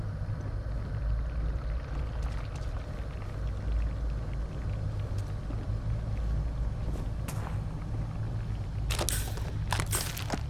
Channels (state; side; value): identical; both; correlation 1.00